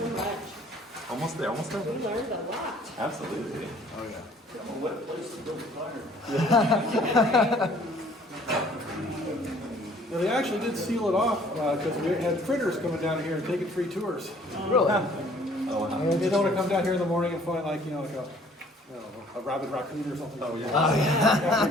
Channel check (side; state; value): both; normal; correlation 0.57